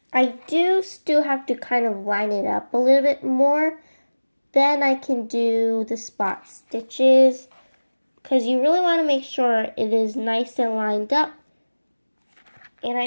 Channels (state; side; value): inverted; both; correlation -1.00